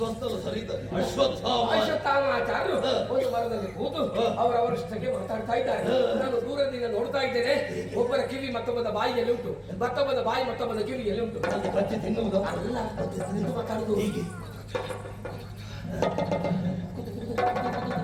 ಒಂದು ಮರದಲ್ಲಿ ಕೂತು ಅವರವರಷ್ಟಕ್ಕೆ ಮಾತಾಡ್ತಾ ಇದ್ದಾರೆ. ನಾನು ದೂರದಿಂದ ನೋಡ್ತಾ ಇದ್ದೇನೆ. ಒಬ್ಬರ ಕಿವಿ ಮತ್ತೊಬ್ಬದ ಬಾಯಿಯಲ್ಲಿ ಉಂಟು, ಮತ್ತೊಬ್ಬದ ಬಾಯಿ ಮತ್ತೊಬ್ಬದ ಕಿವಿಯಲ್ಲಿ ಉಂಟು. ಅಲ್ಲ, ಮಾತಾಡುದು ಹೀಗೆ.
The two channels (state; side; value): identical; both; correlation 1.00